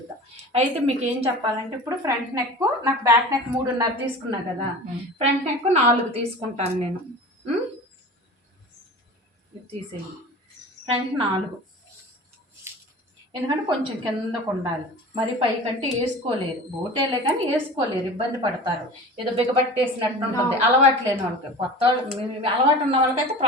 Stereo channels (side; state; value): both; normal; correlation 0.36